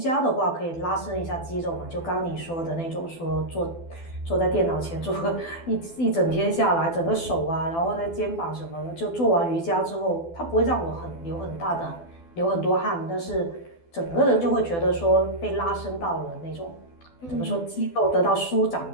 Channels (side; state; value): right; late; 12 ms